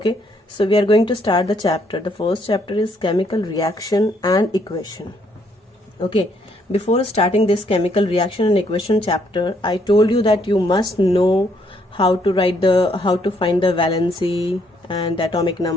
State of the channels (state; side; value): normal; both; correlation 0.70